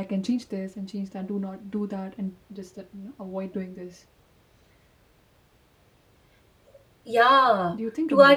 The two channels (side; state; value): both; identical; correlation 1.00